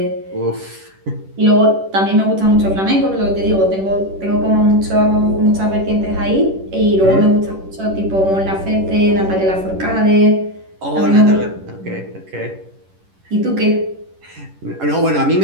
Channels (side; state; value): left; late; 10 ms